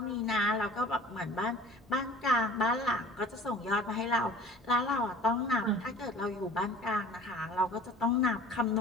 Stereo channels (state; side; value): normal; both; correlation 0.46